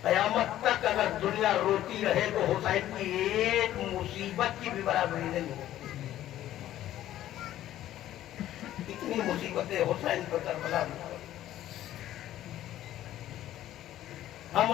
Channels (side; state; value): right; quieter; 13.1 dB